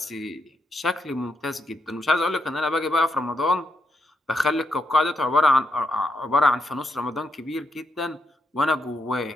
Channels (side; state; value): both; normal; correlation 0.80